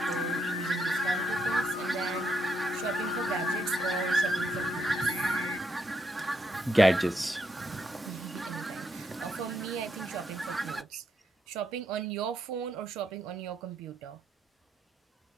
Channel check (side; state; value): both; normal; correlation 0.78